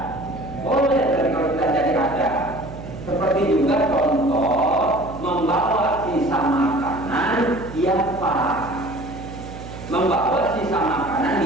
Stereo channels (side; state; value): right; noise; hum, 12 dB below the sound